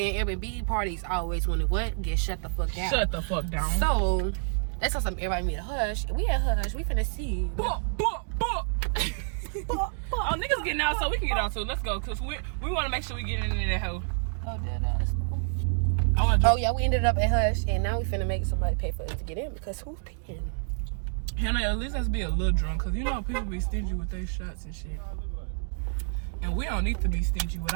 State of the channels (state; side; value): silent; left; digital silence